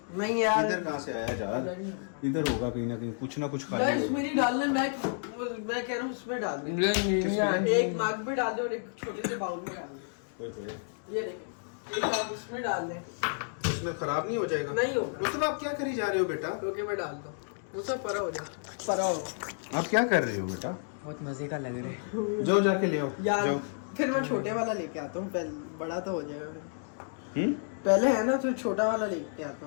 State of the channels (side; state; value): right; silent; digital silence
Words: नहीं यार। इधर कहाँ से आया जार? इधर होगा कहीं ना कहीं, कुछ ना कुछ गाइस खाली होगा। मेरी डालने मैं कह रहा हूँ उसमें डाल दे। एक मग में डाल दे और एक छोटे से बाउल में डाल दे। ये देखिए, एक मग उसमें डाल दे। इसमें खराब नहीं हो जाएगा? नहीं होगा। मतलब आप क्या करी जा रहे हो बेटा? ओके मैं डाल दूँ, वो सब परा हो जाए। परा हो आप क्या कर रहे हो बेटा? बहुत मजे का लग रहा है। जाओ जाके ले आओ यार। जाओ। फिर मैं छोटे वाला लेके आता हूँ, पहले बड़ा तो हो जाएगा। हम्म? पहले है ना, तो छोटा वाला लेके आता